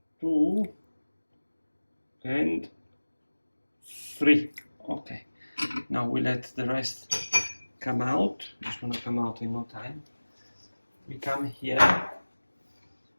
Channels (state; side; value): inverted; both; correlation -1.00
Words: 2, and 3. Okay. Now we let the rest come out. It's gonna come out in no time. We come here